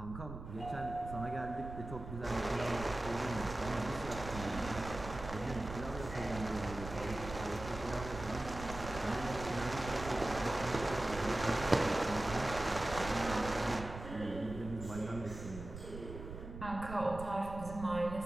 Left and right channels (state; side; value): noise; right; rumble, 10 dB below the sound